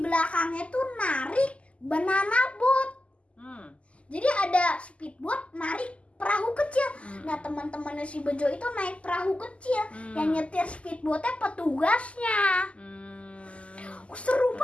tuh narik banana boat. Jadi ada speedboat narik perahu kecil. Nah, teman-temannya si Bejo itu naik perahu kecil. Yang nyetir speedboatnya petugasnya. Seru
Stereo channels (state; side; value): late; right; 0.059 ms